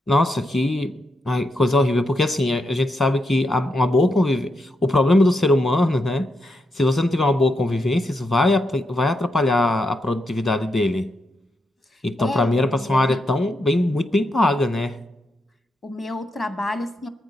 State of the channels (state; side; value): normal; both; correlation 0.83